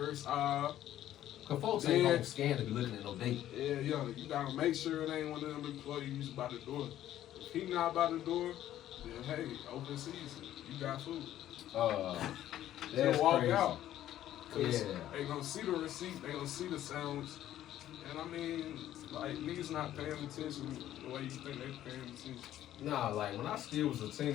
aisle. Cause folks ain't gonna scan to be looking at no date. Yeah, you gotta make sure it ain't one of them employees by the door. If he not by the door, then hey, open season, you got food. That's Just walk crazy. out. Cause Yeah. they gonna see the receipt, they gonna see the sandwich. And I mean, like, niggas not paying attention the way you think they paying attention. Nah, like when I still was a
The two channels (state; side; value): quieter; right; 12.5 dB